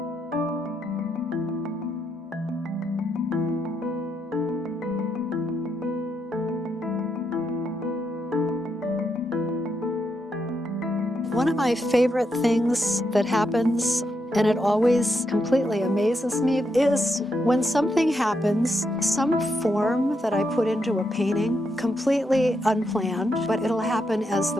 One of my favorite things that happens, and it always completely amazes me, is when something happens, some form that I put into a painting, completely unplanned, but it'll happen as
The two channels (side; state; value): both; normal; correlation 0.81